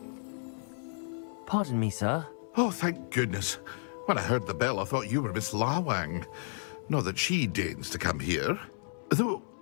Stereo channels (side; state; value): right; silent; 56 dB below the other